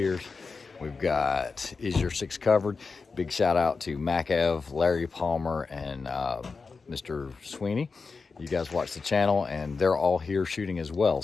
We've got Is Your Six Covered? Big shout out to Mac Ev, Larry Palmer, and Mr. Sweeney. You guys watch the channel, and they're all here shooting as well.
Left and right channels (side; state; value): right; quieter; 4.6 dB